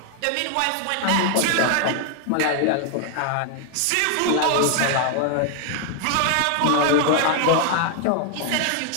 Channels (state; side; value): different; both; correlation 0.00